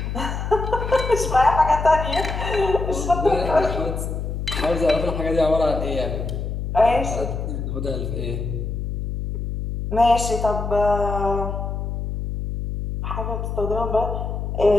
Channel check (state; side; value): noise; left; hum, 4 dB below the sound